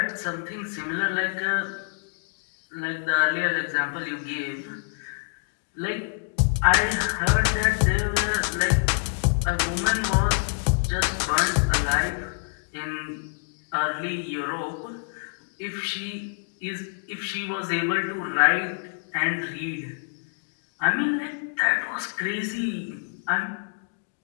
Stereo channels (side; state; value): right; silent; digital silence